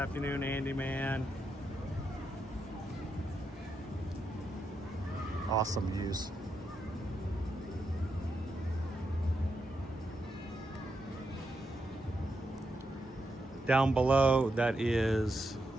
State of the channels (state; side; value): normal; both; correlation 0.84